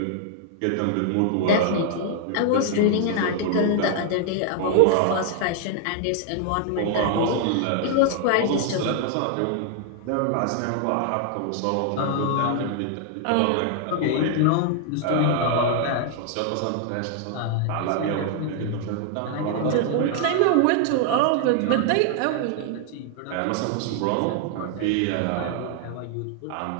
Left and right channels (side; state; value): both; different; correlation 0.00